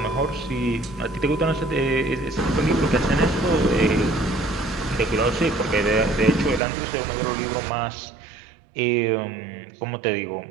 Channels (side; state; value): left; drops out; at 6.6 s